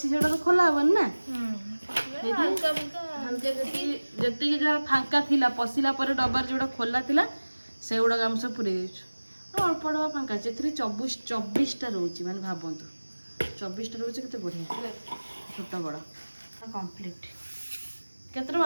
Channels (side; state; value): both; inverted; correlation -1.00